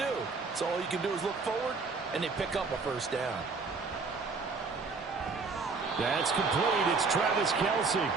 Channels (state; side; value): quieter; left; 4.4 dB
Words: So all you can do is look forward, and they pick up a first down. That's complete. It's Travis Kelce.